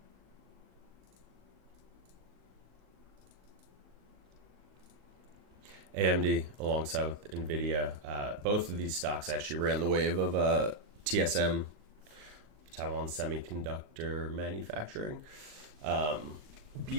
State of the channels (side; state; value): left; late; 39 ms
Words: AMD alongside with NVIDIA. Both of these stocks actually ran the wave of TSM, Taiwan Semiconductor Manufacturing.